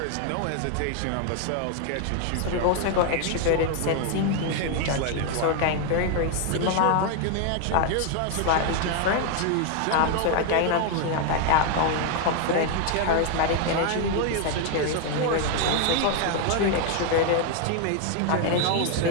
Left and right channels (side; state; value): both; different; correlation 0.00